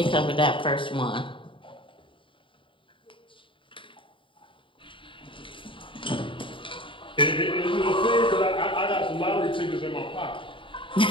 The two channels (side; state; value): right; late; 0.25 ms